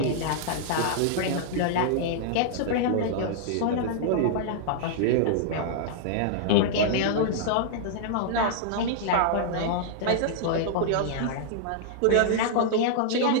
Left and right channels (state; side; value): different; both; correlation -0.01